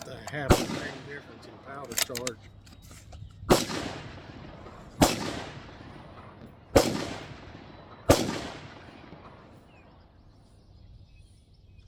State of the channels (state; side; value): identical; both; correlation 1.00